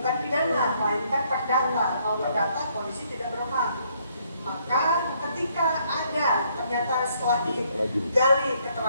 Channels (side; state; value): both; inverted; correlation -0.69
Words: pidana, melainkan perdata. Kalau perdata, polisi tidak berwenang. Maka ketika ada, ternyata setelah digali